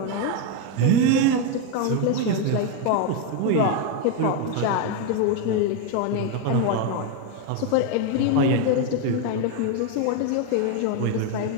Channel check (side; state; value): both; different; correlation 0.02